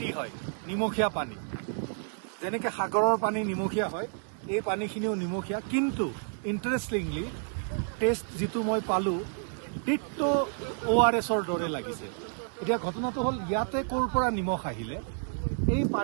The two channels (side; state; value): left; silent; 58 dB below the other